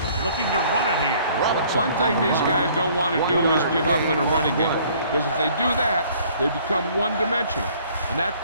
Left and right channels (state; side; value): inverted; both; correlation -0.57